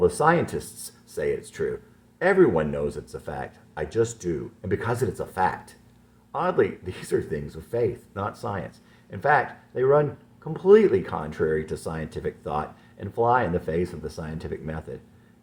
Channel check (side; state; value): both; identical; correlation 1.00